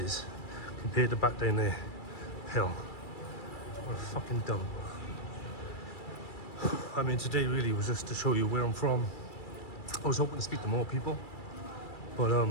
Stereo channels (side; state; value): right; late; 2.3 ms